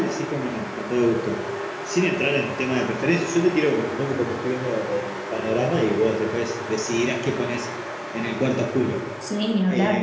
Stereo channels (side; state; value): both; identical; correlation 1.00